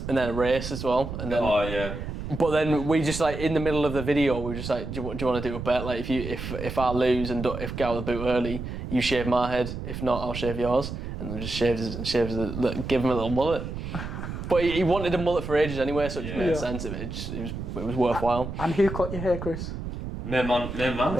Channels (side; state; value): right; noise; rumble, 7 dB below the sound